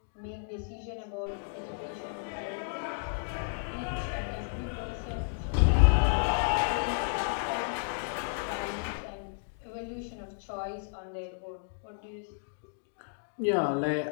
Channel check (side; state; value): right; silent; digital silence